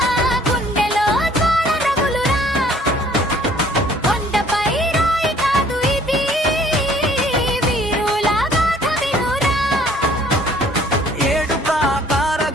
గుండెలో జ్వాల రగులురా, కొండపై రాయి కాదు ఇది, వీరుల గాథ వినురా. ఏడు ప్రాకార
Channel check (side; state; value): both; normal; correlation 0.57